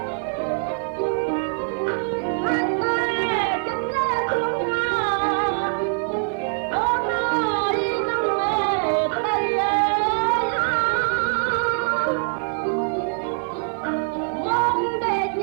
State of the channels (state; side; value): silent; left; digital silence